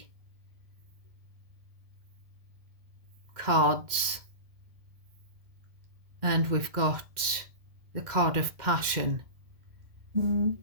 cards, and we've got the card of passion.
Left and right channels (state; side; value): late; left; 1.7 ms